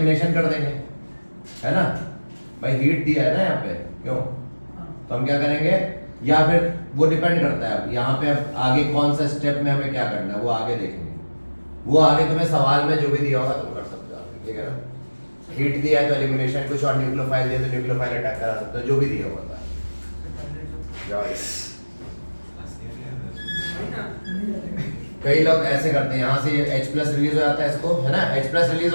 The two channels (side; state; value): both; inverted; correlation -1.00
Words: कर देंगे, है ना भाई? हीट दिया है ना यहाँ पे, क्यों? तो हम क्या करेंगे, या फिर वो डिपेंड करता है अब यहाँ पे अब आगे कौन सा स्टेप में हमें क्या करना है वो आगे देखेंगे। वो आगे तुम्हें सवाल में जो भी दिया होगा तुम कर सकते हो, ठीक है ना? हीट दिया है तो एलिमिनेशन, कुछ और न्यूक्लियोफाइल दिया तो न्यूक्लियोफाइल अटैक करा सकते हो, जो भी दिया होगा था। कई लोग ऐसे करते हैं, यहाँ से H+ रिलीज हो जाता है इसको, है ना? H+ रिलीज